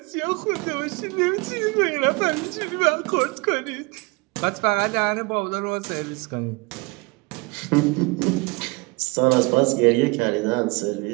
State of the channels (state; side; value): quieter; left; 27.4 dB